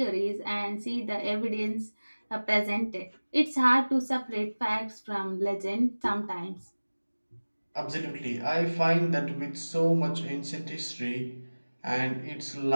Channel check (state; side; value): inverted; both; correlation -1.00